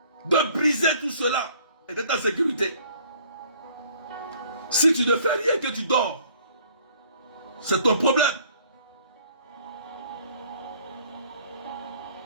de briser tout cela et d'être en sécurité. Si tu ne fais rien que tu dors, c'est ton problème.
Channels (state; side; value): inverted; both; correlation -0.57